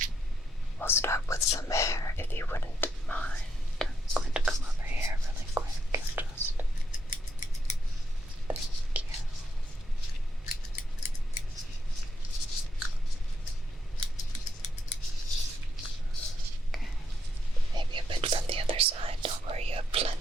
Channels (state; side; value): normal; both; correlation 0.78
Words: We'll start with some hair, if you wouldn't mind. I'm going to come over here really quick and just... Thank you. Okay. Maybe a bit from the other side. Don't worry, you have